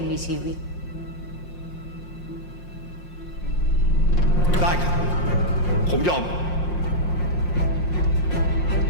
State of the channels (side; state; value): right; late; 5.6 ms